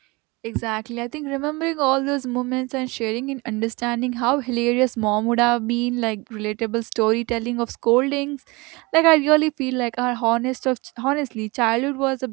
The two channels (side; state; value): left; quieter; 25.0 dB